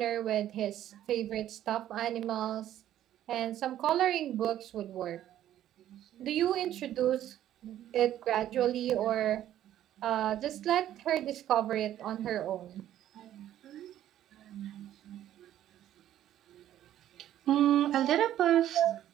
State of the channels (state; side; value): quieter; left; 12.0 dB